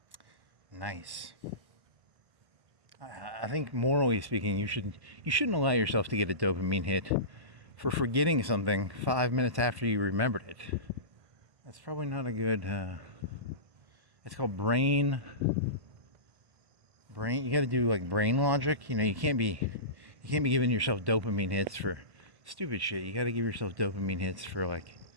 Nice. I think morally speaking, you shouldn't allow yourself to get a dopamine hit for forgetting something 5 minutes after you remembered it. That's probably not a good. It's called brain. You got to do like brain logic. You know, you can't be giving yourself dopamine hits for stupid shit. You got to give yourself dopamine hits for like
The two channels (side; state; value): left; late; 1.1 ms